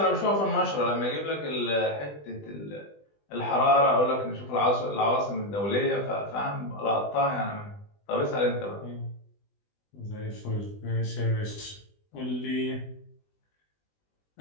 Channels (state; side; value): late; right; 20 ms